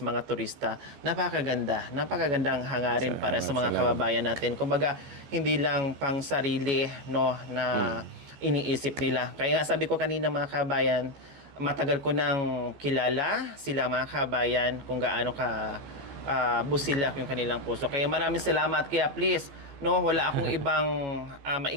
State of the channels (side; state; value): left; late; 14 ms